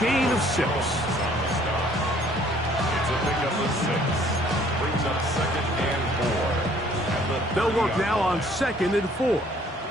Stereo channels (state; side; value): normal; both; correlation 0.59